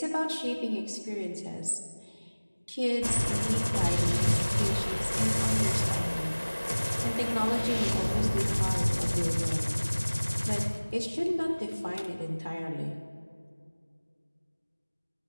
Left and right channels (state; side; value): inverted; both; correlation -1.00